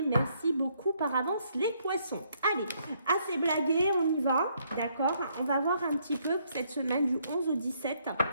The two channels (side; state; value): both; inverted; correlation -0.71